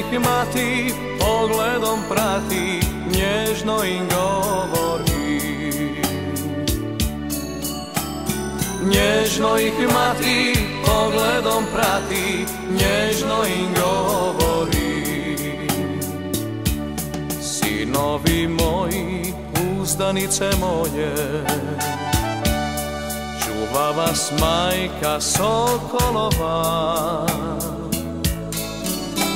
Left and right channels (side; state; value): both; identical; correlation 1.00